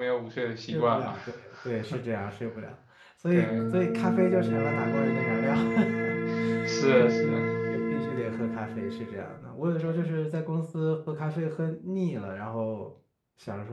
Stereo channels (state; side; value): identical; both; correlation 1.00